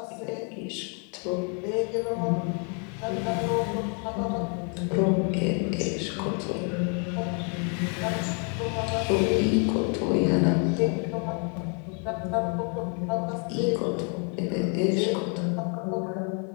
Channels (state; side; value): quieter; right; 39.1 dB